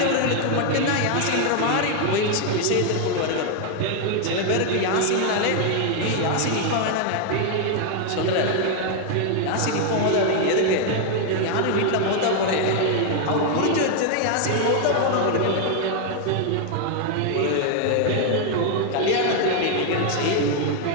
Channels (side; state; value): both; different; correlation 0.00